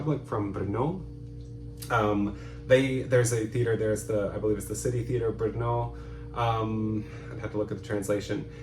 from Brno. There's a theater, I believe it's the City Theater Brno. I'd have to look at the translation,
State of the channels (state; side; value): identical; both; correlation 1.00